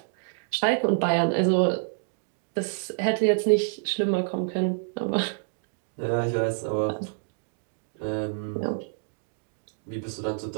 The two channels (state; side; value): silent; left; digital silence